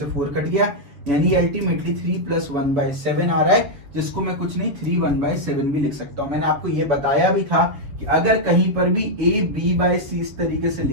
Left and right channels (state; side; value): late; left; 7.4 ms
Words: 4 कट गया, यानी अल्टीमेटली 3 प्लस 1/7 आ रहा है, जिसको मैं कुछ नहीं 3 1/7 भी लिख सकता हूं। मैंने आपको ये बताया भी था कि अगर कहीं पर भी a b/c इस तरीके से